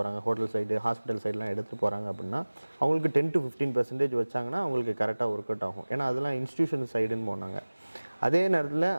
ஹோட்டல் சைடு, ஹாஸ்பிட்டல் சைடெலாம் எடுத்துகிட்டு போகிறாங்க அப்படின்னா அவங்களுக்கு 10 to 15% வச்சாங்கன்னா அவங்களுக்கு கரெக்டாக ஒர்க் அவுட் ஆகும். ஏன்னா அதெல்லாம் இன்ஸ்டியூஷன் சைடுன்னு போனாங்க. அதே நேரத்தில்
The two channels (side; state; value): both; inverted; correlation -1.00